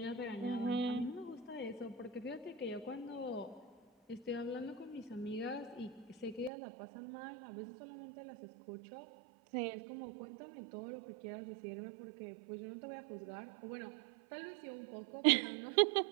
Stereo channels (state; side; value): drops out; left; at 6.5 s